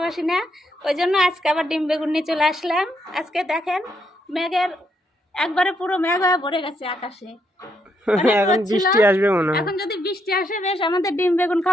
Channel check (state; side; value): normal; both; correlation 0.76